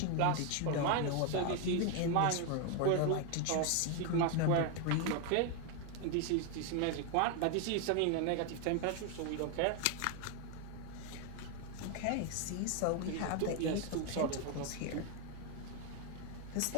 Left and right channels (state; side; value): different; both; correlation 0.01